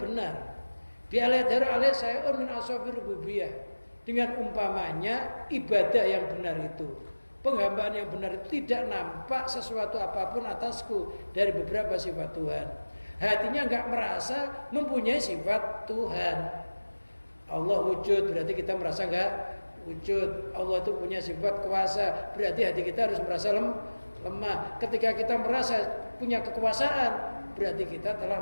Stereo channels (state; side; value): inverted; both; correlation -1.00